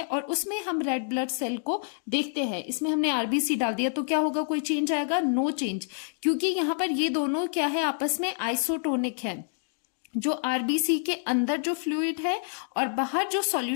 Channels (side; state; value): right; silent; 60 dB below the other